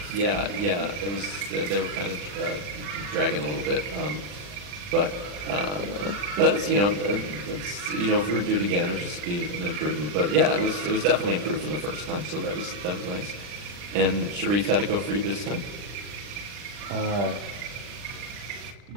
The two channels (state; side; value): late; left; 40 ms